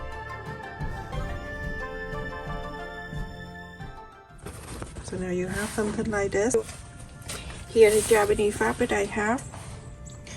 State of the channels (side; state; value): both; identical; correlation 1.00